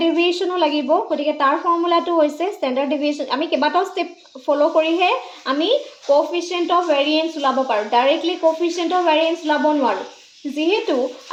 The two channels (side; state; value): both; identical; correlation 1.00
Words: deviation লাগিব গটিকে তাৰ ফৰ্মুলাটো হৈছে standard deviation আমি কেবাটাও step follow কৰিহে আমি coefficient of variance উলাব পাৰো directly coefficient of variance উলাব নোৱাৰো যেহেতু